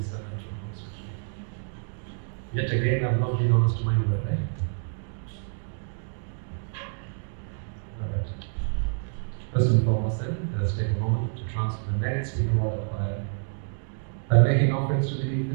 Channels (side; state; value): left; silent; digital silence